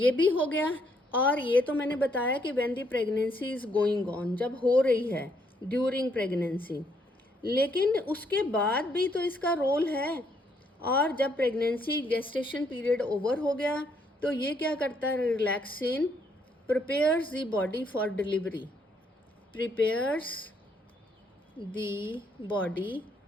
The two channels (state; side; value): normal; both; correlation 0.71